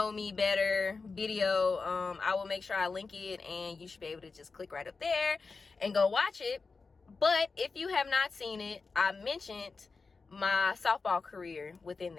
me better video. I will make sure I link it, and you should be able to just click right up there and go watch it. But if you have not seen it, I mentioned my softball career within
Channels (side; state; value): right; quieter; 4.4 dB